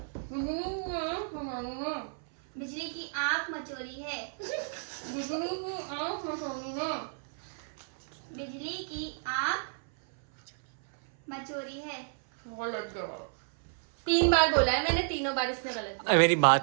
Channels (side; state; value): left; silent; 57 dB below the other